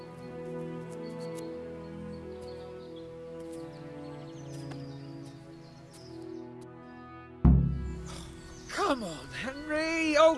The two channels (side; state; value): both; identical; correlation 1.00